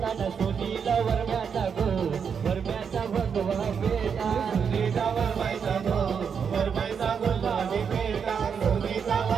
न सुनीला वरम्याचा गो वरम्याचा भगवा बेटा सुनीता वरमाईचा गो वरमाईचा गुलाबी बेटा सुनीता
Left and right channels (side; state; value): left; quieter; 6.7 dB